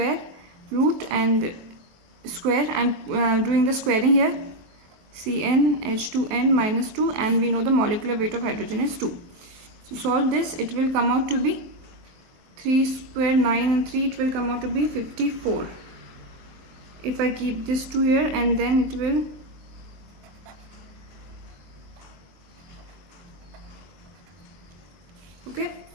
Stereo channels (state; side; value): late; left; 23 ms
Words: root and square. I am doing the squaring here. CnH2n-2, and we know the molecular weight of hydrogen is 2. So solve this. It will come out to be 3 square 9 and 3. It will come out to be 54. If I keep this 2 here, and then it will okay,